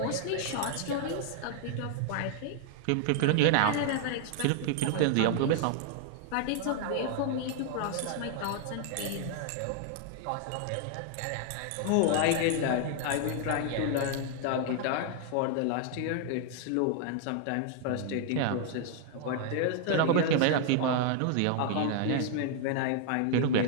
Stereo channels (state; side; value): different; both; correlation 0.00